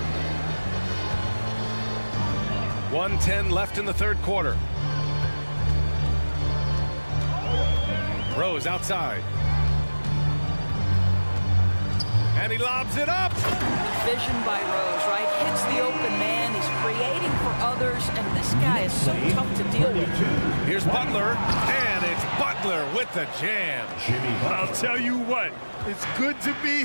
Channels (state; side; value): inverted; both; correlation -1.00